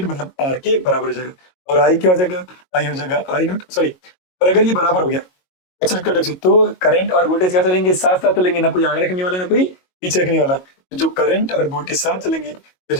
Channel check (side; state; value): right; late; 22 ms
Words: मतलब R के बराबर हो जाएगा। और I क्या हो जाएगा, I हो जाएगा I नॉट, सॉरी, और अगर ये बराबर हो गया XL इक्वल टू XC, तो करंट और वोल्टेज क्या चलेंगे, साथ साथ चलेंगे, ना कोई आगे रखने वाला ना कोई पीछे रखने वाला। तो जो करंट और वोल्टेज साथ चलेंगे तो